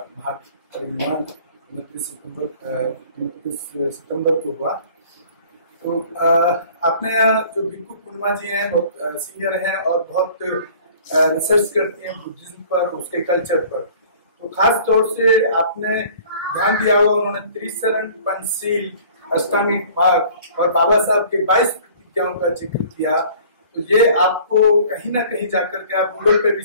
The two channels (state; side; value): inverted; both; correlation -0.50